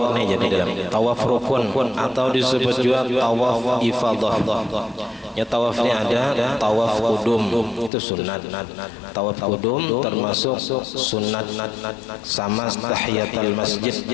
jadi dalam tawaf rukun atau disebut juga tawaf ifadah. Ya, tawafnya ada tawaf kudum, itu sunat. Tawaf kudum termasuk sunat sama tahiyatul masjid.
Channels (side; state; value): right; drops out; at 7.9 s